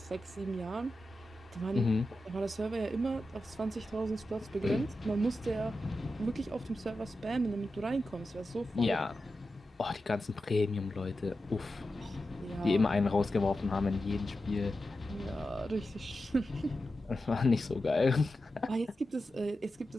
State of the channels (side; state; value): both; normal; correlation 0.91